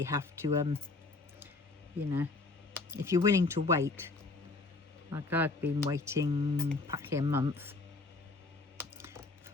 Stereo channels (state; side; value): quieter; right; 3.5 dB